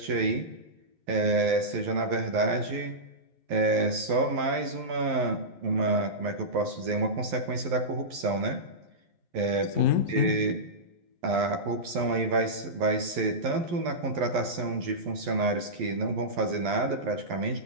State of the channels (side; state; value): left; late; 11 ms